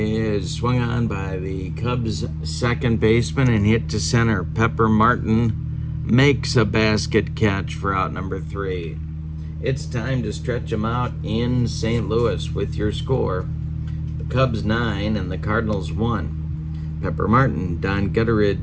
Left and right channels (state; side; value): identical; both; correlation 1.00